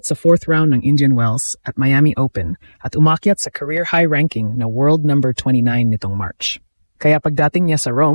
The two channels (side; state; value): both; inverted; correlation -1.00